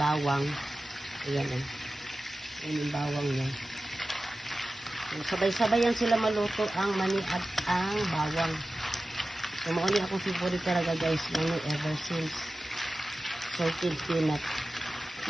bawang. Ayan eh. Ayan yung bawang niya. So, sabay-sabay yan sila maluto ang mani at ang bawang. So mauni akong favorite talaga guys, mani ever since salted peanut.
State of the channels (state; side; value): normal; both; correlation 0.95